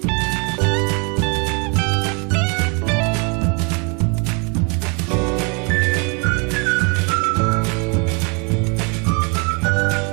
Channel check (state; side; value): quieter; left; 33.7 dB